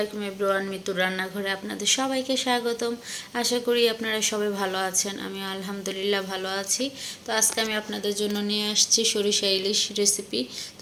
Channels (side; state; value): both; identical; correlation 1.00